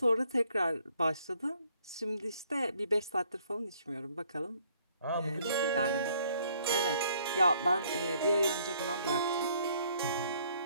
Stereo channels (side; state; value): both; inverted; correlation -0.65